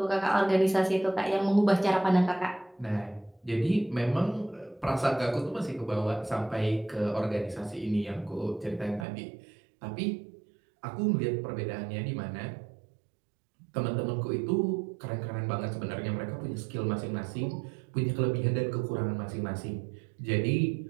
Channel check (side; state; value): left; drops out; at 9.1 s